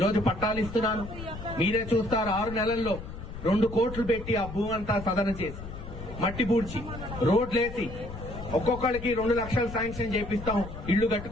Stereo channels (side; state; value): left; noise; rumble, 11 dB below the sound